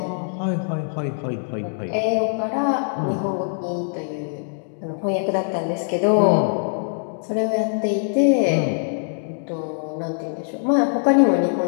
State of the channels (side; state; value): right; silent; digital silence